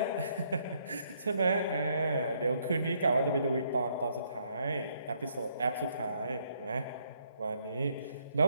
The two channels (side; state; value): both; inverted; correlation -0.71